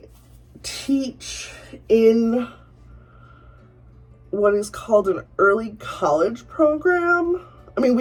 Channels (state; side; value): identical; both; correlation 1.00